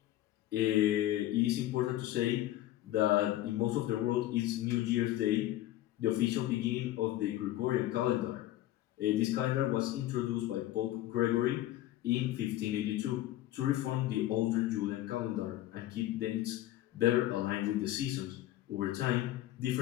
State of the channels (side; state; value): right; quieter; 14.6 dB